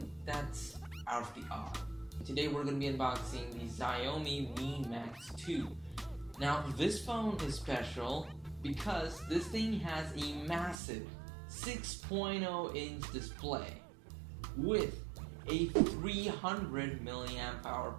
that's out of the odd. Today we're going to be unboxing the Xiaomi Mi Max 2. Now this phone is special because this thing has a massive 6.0 inch display with a 300 milliamp hour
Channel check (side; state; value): left; drops out; at 10.8 s